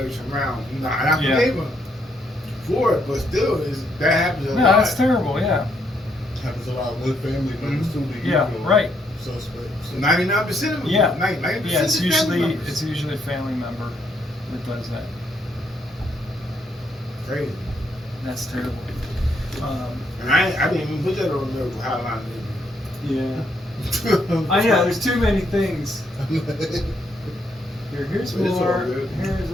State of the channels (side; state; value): both; normal; correlation 0.74